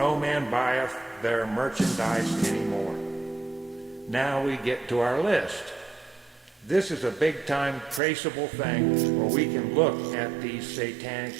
man buyeth their merchandise anymore. Now we get to our list. This is a big-time traceable thing where we can look at these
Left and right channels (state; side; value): drops out; left; at 8.0 s